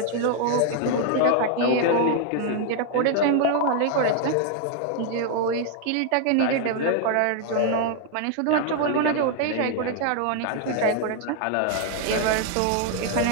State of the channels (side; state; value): both; different; correlation 0.00